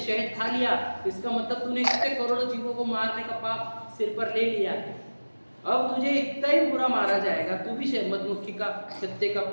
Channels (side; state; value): both; inverted; correlation -1.00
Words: खा लिया, इसका मतलब तूने कितने करोड़ों जीवों को मारने का पाप सिर पर ले लिया है। अब तुझे इतना ही बुरा मारा जाएगा, तू भी मधुमक्खी का छत्ते का